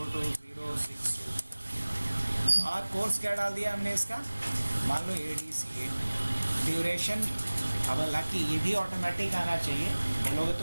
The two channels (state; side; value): inverted; both; correlation -1.00